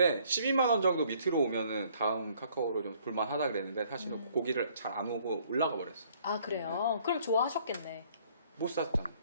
12만 원 정도 밑으로 오면은 다음 카카오로 좀 볼만하다 그랬는데 사실은 고기를 잘 안 오고 올라가 버렸어. 아 그래요? 그럼 좋아하셨겠네. 못 샀잖아.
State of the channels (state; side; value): inverted; both; correlation -0.61